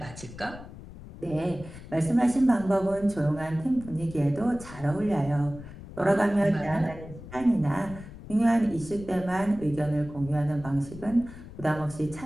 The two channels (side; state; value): left; noise; rumble, 15 dB below the sound